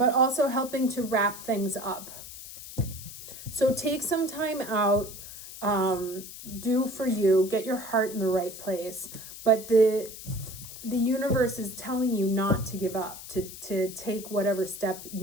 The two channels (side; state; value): left; noise; hiss, 13 dB below the sound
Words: also helping to wrap things up. So take some time out, do for you, get your heart in the right place. But the universe is telling you not to give up, to take whatever step